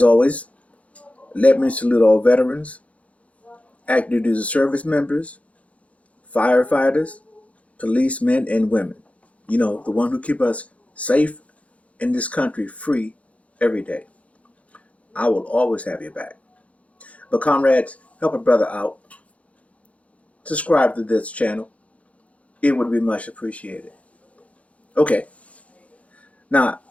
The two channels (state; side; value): late; right; 0.065 ms